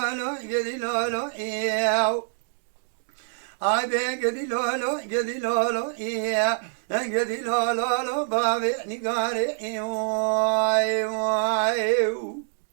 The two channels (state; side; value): silent; left; digital silence